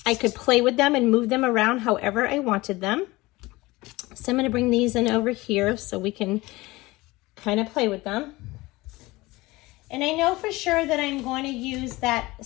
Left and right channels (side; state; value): right; quieter; 20.7 dB